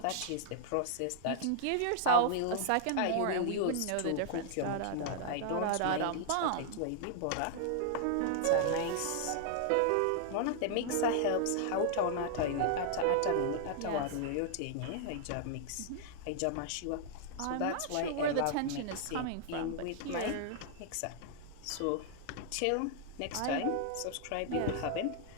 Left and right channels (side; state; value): both; different; correlation 0.00